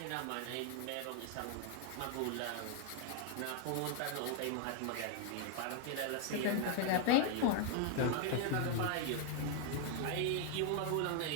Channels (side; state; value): both; different; correlation 0.00